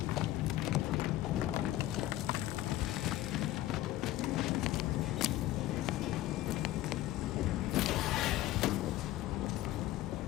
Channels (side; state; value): right; quieter; 15.1 dB